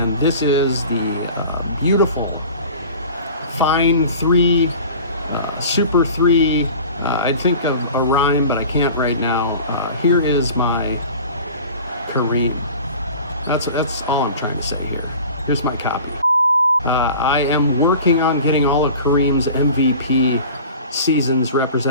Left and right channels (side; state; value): both; inverted; correlation -0.40